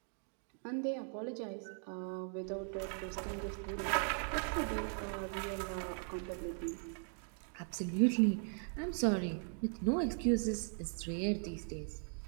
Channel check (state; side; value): silent; left; 52 dB below the other